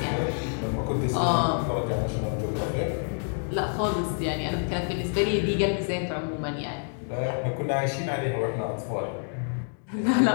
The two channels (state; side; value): silent; right; 60 dB below the other